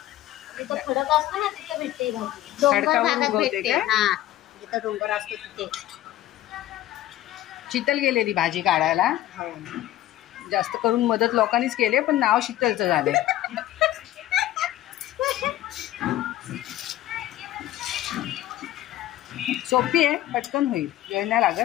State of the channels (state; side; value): quieter; right; 14.1 dB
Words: खडक असतो ना तिथे भेटते भाजी. डोंगर भागात भेटते. हा, जिथं डोंगर असतो तिथे. शीतल गेलेली भाजी काढायला. जास्त करून मदत लोकांनीच केले, पण नाव शीतलचं झाले. सोपी आहे, पटकन होईल, वेळ नाही